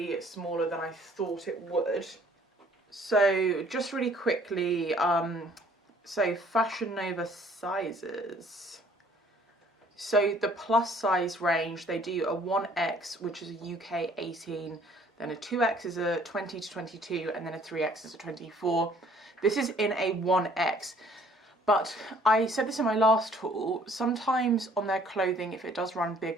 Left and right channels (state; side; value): normal; both; correlation 0.58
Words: smaller than I thought it would. So just really quickly, so Fashion Nova sizes. So the plus size range, they do a 1X, which is a UK 18, then a 2X is a 20 to 22, and then a 3X is a 24. This is in a 1X. But I said this in my last haul, sometimes on their clothing, if it does run